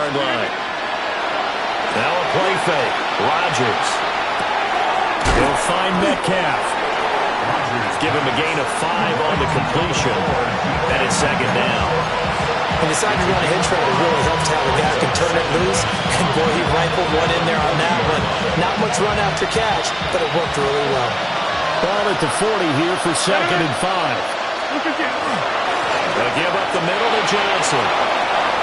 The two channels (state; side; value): identical; both; correlation 1.00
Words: line. Now a play fake. Rodgers. He'll find Metcalf. Give him a gain of 5 on the completion. And it's 2nd down. And decided to run a hitch route. It really helps to have a guy who can turn it loose. And boy, he rifled one in there on that one. Not much run after catch, but it worked really well. Ball at the 40 here for 2nd and 5. They'll give up the middle to Johnson.